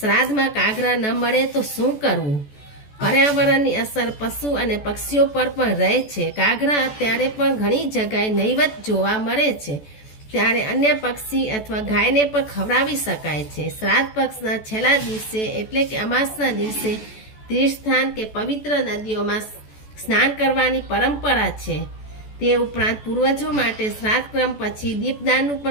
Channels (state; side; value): late; right; 14 ms